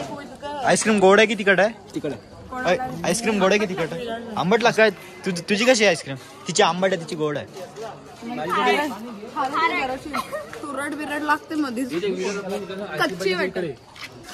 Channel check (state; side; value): identical; both; correlation 1.00